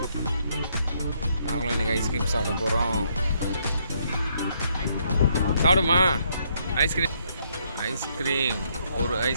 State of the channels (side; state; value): both; inverted; correlation -0.72